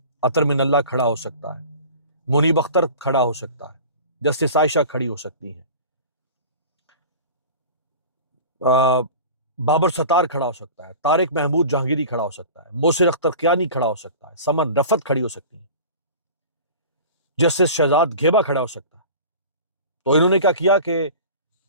عطر من اللہ کھڑا ہو سکتا ہے، منیب اختر کھڑا ہو سکتا ہے، جسٹس عائشہ کھڑی ہو سکتی ہیں، بابر ستار کھڑا ہو سکتا ہے، طارق محمود جہانگیری کھڑا ہو سکتا ہے، موسر اختر کیانی کھڑا ہو سکتا ہے، سمن رفت کھڑی ہو سکتی ہیں، جسٹس شہزاد گھیبا کھڑا ہو سکتا ہے۔ تو انہوں نے کیا کیا کہ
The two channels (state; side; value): inverted; both; correlation -0.38